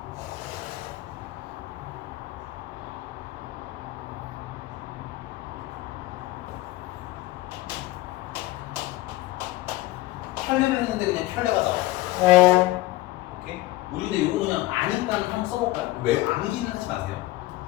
켤레를 했는데 그냥 켤레가 나와. 오케이? 우리 근데 이거 그냥 아니까 한번 써볼까요? 왜 암기는 하지 마세요.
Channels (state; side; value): quieter; right; 17.7 dB